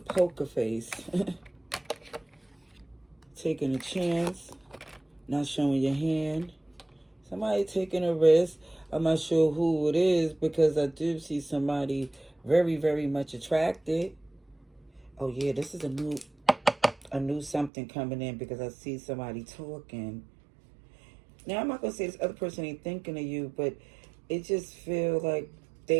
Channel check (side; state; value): left; drops out; at 17.7 s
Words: face. Taking a chance. Not showing your hand. Somebody taking a risk. I'm not sure who it is because I do see somebody very, very much attracted. Oh yeah, this is a new something coming in because I see somebody talking. Now I'm not gonna say this other person ain't thinking of you, but it just feels like